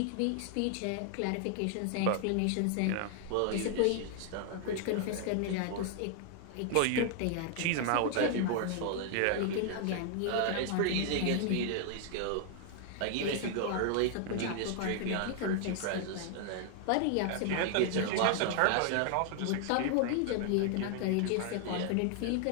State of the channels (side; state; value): both; different; correlation 0.00